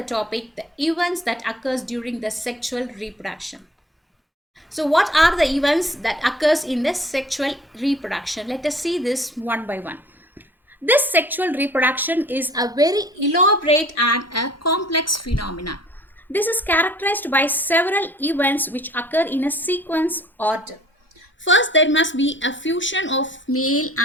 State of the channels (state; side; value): normal; both; correlation 0.51